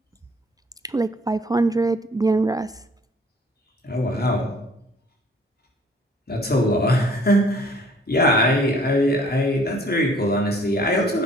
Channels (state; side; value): normal; both; correlation 0.57